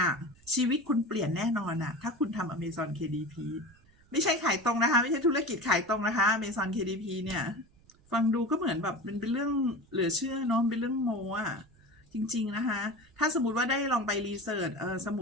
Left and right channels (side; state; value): right; noise; rumble, 29 dB below the sound